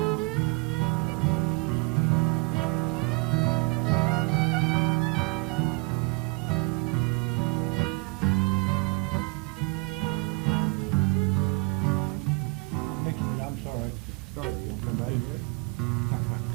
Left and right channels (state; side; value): quieter; left; 29.4 dB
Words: All right. Start it, you want to come back to it?